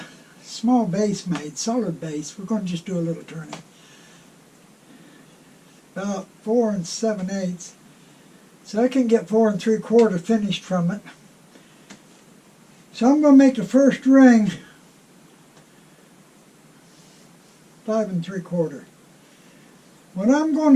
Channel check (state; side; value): identical; both; correlation 1.00